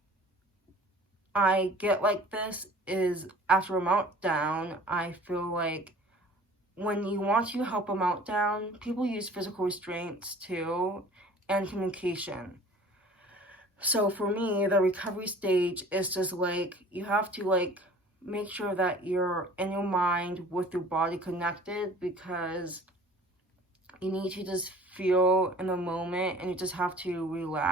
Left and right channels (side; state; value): both; normal; correlation 0.47